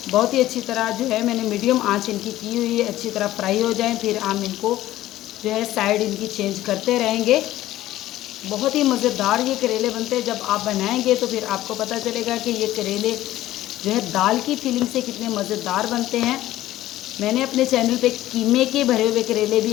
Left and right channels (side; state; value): right; quieter; 14.8 dB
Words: बहुत ही अच्छी तरह जो है मैंने मीडियम आंच इनकी की हुई है, अच्छी तरह फ्राई हो जाएं फिर हम इनको जो है साइड इनकी चेंज करते रहेंगे। बहुत ही मज़ेदार ये करेले बनते हैं। जब आप बनाएंगे तो फिर आपको पता चलेगा कि ये करेले जो है दाल की फीलिंग से कितने मज़ेदार बनते हैं। मैंने अपने चैनल पे कीमे के भरे हुए करेले भी